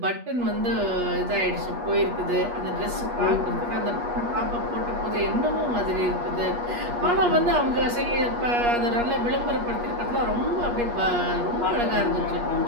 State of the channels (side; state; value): left; late; 8.4 ms